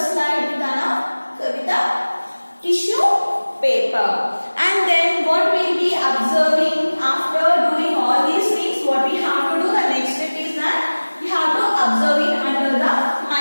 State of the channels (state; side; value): inverted; both; correlation -1.00